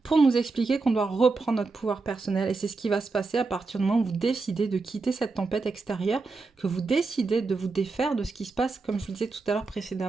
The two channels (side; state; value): left; quieter; 3.9 dB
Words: Pour nous expliquer qu'on doit reprendre notre pouvoir personnel. Et c'est ce qui va se passer à partir du moment où vous décidez de quitter cette tempête extérieure, que vous décidez de vous défaire de ce qui se passe, comme je vous le disais tout à l'heure